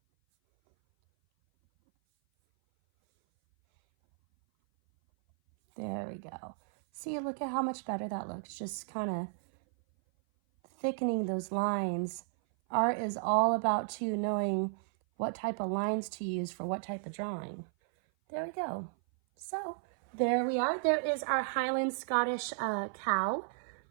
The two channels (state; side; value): silent; left; 55 dB below the other